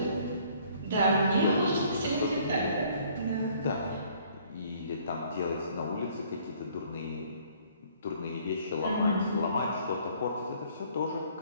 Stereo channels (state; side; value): inverted; both; correlation -0.60